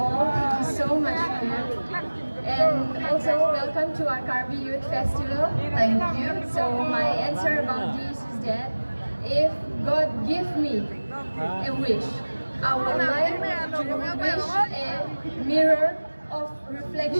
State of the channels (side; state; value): both; inverted; correlation -1.00